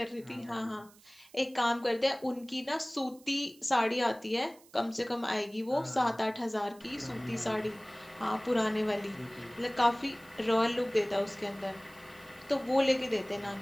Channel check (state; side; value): noise; right; hiss, 26 dB below the sound